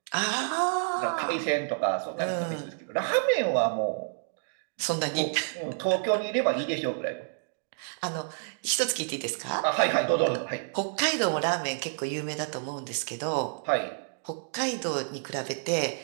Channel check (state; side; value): silent; left; digital silence